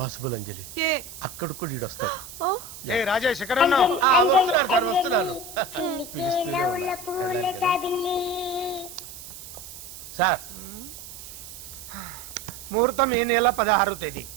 అంజలి. ఏ అక్కడ కూడా ఈడు వస్తాడు. ఏ రాజేష్, ఎక్కడ ఉన్నావు? వస్తున్నాను సార్, వస్తున్నాను. పిలుస్తూనే ఉన్నా. సార్, ముహూర్తం ఈ నెల 16వ తేదీ.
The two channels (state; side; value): noise; right; hiss, 13 dB below the sound